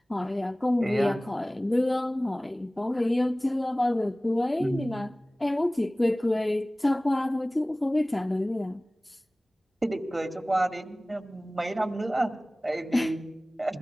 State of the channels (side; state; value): both; normal; correlation 0.98